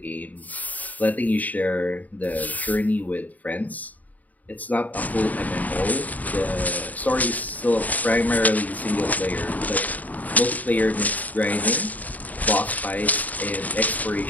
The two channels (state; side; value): late; right; 0.076 ms